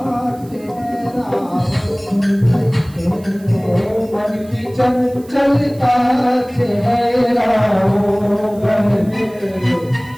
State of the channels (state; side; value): noise; right; hiss, 26 dB below the sound